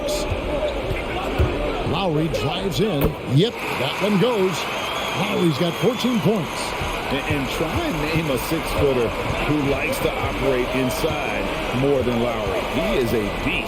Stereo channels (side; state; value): both; identical; correlation 1.00